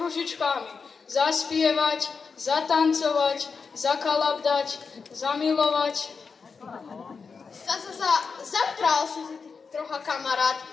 Zaspievať, zatancovať, zakalabdať, zamilovať. Zapral si trocha, kamarát,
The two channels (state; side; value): quieter; right; 5.2 dB